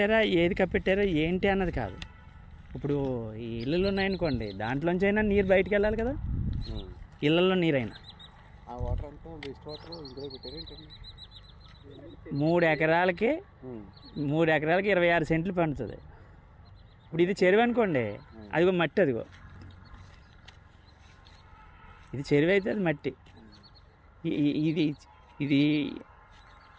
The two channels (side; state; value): both; identical; correlation 1.00